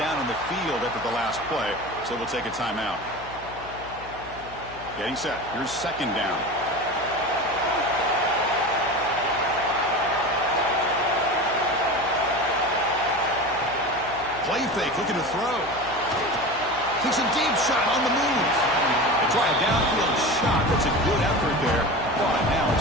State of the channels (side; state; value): left; noise; hum, 18 dB below the sound